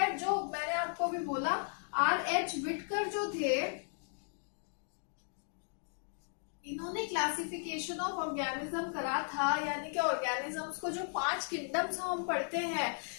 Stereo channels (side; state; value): right; silent; 54 dB below the other